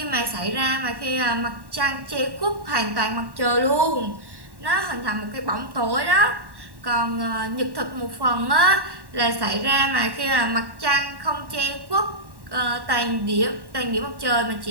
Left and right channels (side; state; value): left; late; 1.1 ms